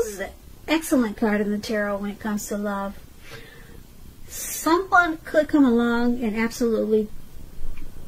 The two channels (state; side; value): identical; both; correlation 1.00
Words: is an excellent card in the tarot when it comes to love. Someone could come along and absolutely